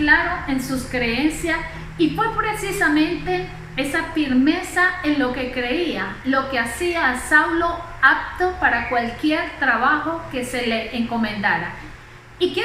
en sus creencias, y fue precisamente esa firmeza en lo que creía lo que hacía a Saulo apto para cualquier trabajo que se le encomendara. Y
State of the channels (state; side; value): identical; both; correlation 1.00